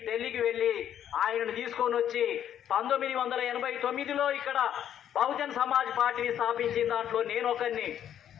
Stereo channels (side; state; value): right; quieter; 10.1 dB